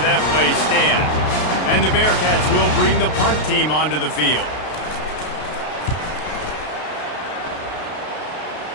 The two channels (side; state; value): right; late; 33 ms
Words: that play stand. And the Bearcats will bring the punt team onto the field.